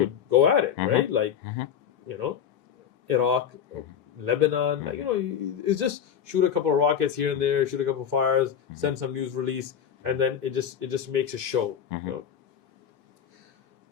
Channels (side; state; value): right; quieter; 8.4 dB